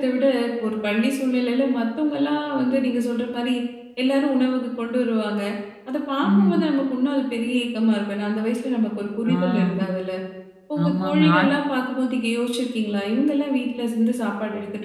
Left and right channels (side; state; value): both; identical; correlation 1.00